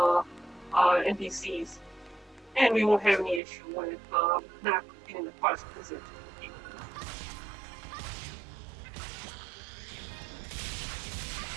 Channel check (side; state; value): left; drops out; at 3.4 s